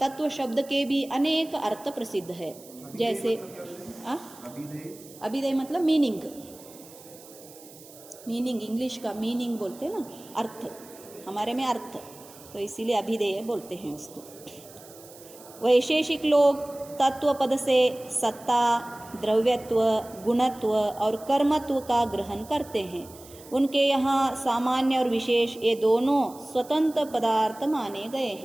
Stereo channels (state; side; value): noise; right; hiss, 20 dB below the sound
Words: शब्द के भी अनेक अर्थ प्रसिद्ध है। जैसे अभिधेय मतलब मीनिंग, इंग्लिश का मीनिंग बोलते हैं ना, अर्थ, हमारे में अर्थ, तो इसीलिए अभिधेय बोलते हैं उसको। वैशेषिक लोग तत्व पद से सत्ता, द्रव्यत्व, गुणत्व और कर्मत्व का ग्रहण करते हैं। उनके यहाँ सामान्य और विशेष ये दोनों स्वतंत्र पदार्थ माने गए